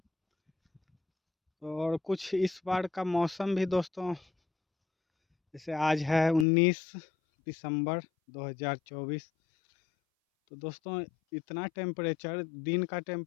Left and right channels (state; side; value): drops out; right; at 6.5 s